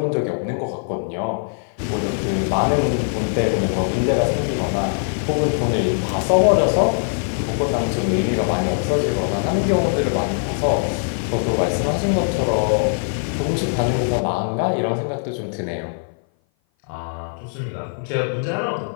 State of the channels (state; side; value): silent; right; 57 dB below the other